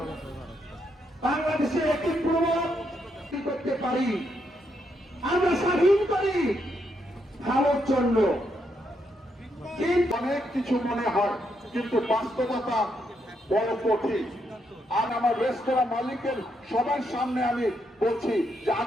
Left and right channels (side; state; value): both; normal; correlation 0.78